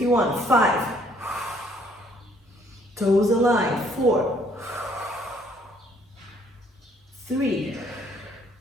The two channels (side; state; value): both; normal; correlation 0.63